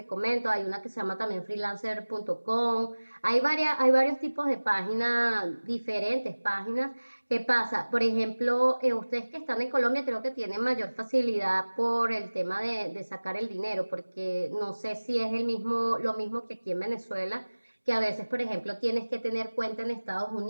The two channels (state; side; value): inverted; both; correlation -1.00